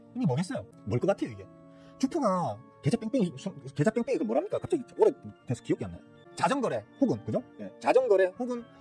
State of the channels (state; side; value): identical; both; correlation 1.00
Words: 이게 뭐겠어요? 뭘 것 같아요, 이게? 주표가 계좌 뺑뺑이 그 뭐랍니까? 갑자기 오래돼서 기억이 안 나요. 자전거래 혹은 그죠? 예, 자전거래 혹은